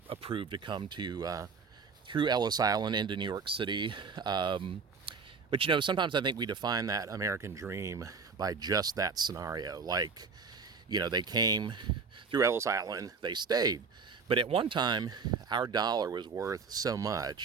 approved to come to through Ellis Island into New York City. But sometimes I think we define that American dream by just that scenario. Like, they came through Ellis Island, they stayed. But at one time, our dollar was worth so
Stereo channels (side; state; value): left; quieter; 5.2 dB